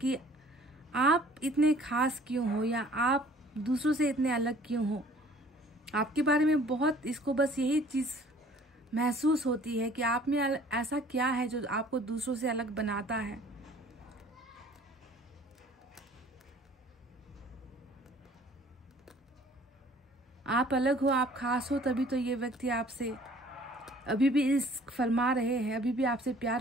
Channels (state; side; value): normal; both; correlation 0.53